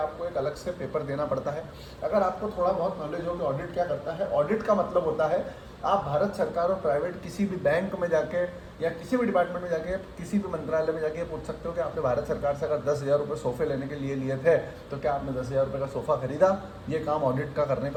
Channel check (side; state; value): both; identical; correlation 1.00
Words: एक अलग से पेपर देना पड़ता है। अगर आपको थोड़ा बहुत नॉलेज हो कि ऑडिट क्या करता है, ऑडिट का मतलब होता है आप भारत सरकार और प्राइवेट किसी भी बैंक में जाके या किसी भी डिपार्टमेंट में जाके, किसी भी मंत्रालय में जाके पूछ सकते हो कि आपने भारत सरकार से अगर 10,000 रुपये सोफे लेने के लिए लिए थे तो क्या आपने 10,000 रुपये का सोफ़ा खरीदा। ये काम ऑडिट का करने